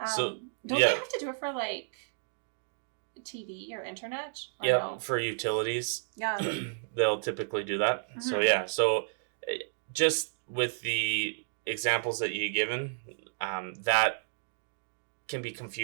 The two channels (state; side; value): silent; left; digital silence